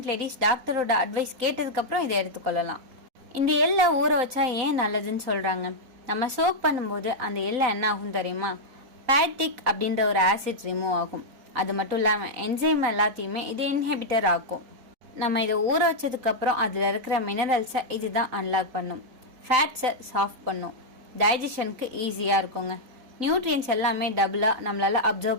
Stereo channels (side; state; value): left; late; 3.9 ms